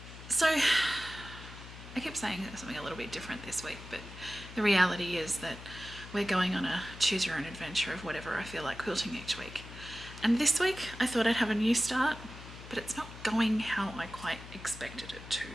So I keep saying something a little bit different this week, but the reality is that we're going on a choose your own adventure of whatever I feel like quilting each week. And this week I thought I'd have a new start, but it's not going how I quite expected it to.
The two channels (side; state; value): left; noise; hum, 14 dB below the sound